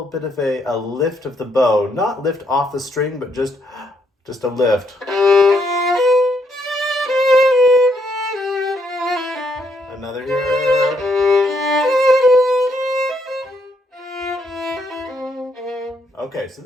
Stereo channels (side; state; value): both; normal; correlation 0.74